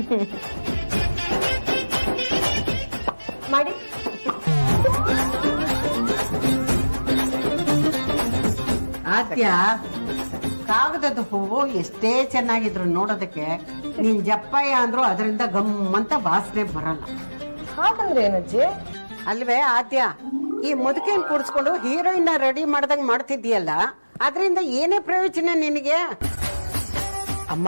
ಮಾಡಿ. ಆದ್ಯ ಕಾಗದದ ಹೂವು ಎಷ್ಟೇ ಚೆನ್ನಾಗಿದ್ರು ನೋಡೋದಕ್ಕೆ ನೀನ್ ಜಪ್ಪಯ್ಯ ಅಂದ್ರು ಅದರಿಂದ ಗಮ್ಮಂತ ವಾಸನೆ ಬರಲ್ಲ. ಹಾಗಂದ್ರೆ ಏನಜ್ಜಿ? ಅಲ್ವೇ ಆದ್ಯ, ಈ ಮುದುಕಿನ ಕೂಡಿಸ್ಕೊಂಡು ಹೀರೋಯಿನ್ ರೆಡಿ ಮಾಡ್ದಂಗ್ ಮಾಡ್ತಿದ್ಯಲ್ಲ, ಅದರಿಂದ ಏನೇ ಪ್ರಯೋಜನ ನಿನಗೆ?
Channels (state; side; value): inverted; both; correlation -1.00